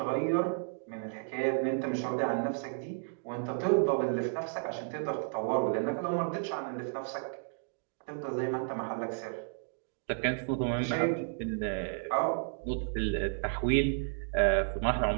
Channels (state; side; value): silent; left; 56 dB below the other